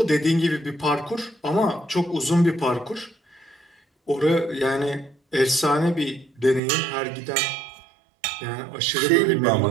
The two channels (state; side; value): drops out; left; at 6.6 s